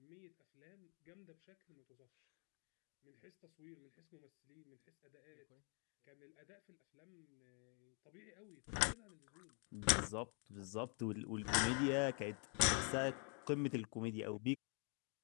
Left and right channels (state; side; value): quieter; right; 38.6 dB